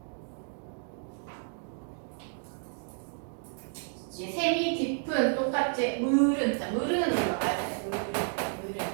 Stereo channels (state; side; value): silent; left; 57 dB below the other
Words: 셈이 깊은 똑같이 물은 자 물은 올라가야 돼. 물은